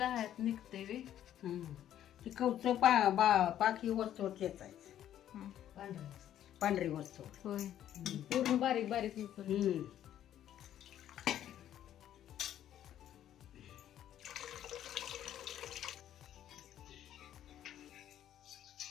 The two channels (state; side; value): quieter; right; 11.2 dB